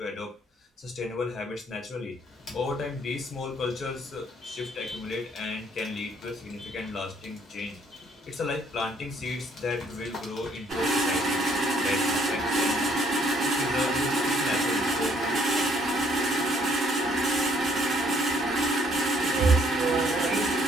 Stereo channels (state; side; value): normal; both; correlation 0.65